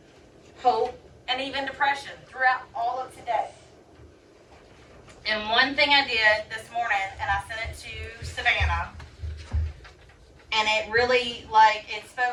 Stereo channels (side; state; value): both; identical; correlation 1.00